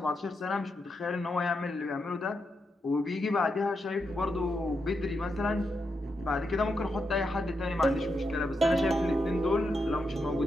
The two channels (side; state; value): both; normal; correlation 0.84